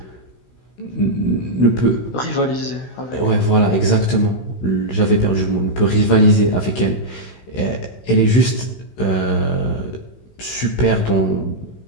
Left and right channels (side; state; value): right; late; 16 ms